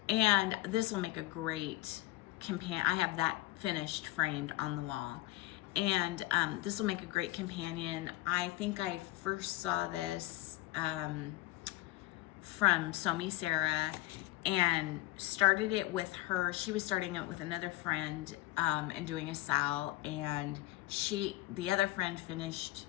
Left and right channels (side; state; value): right; quieter; 18.6 dB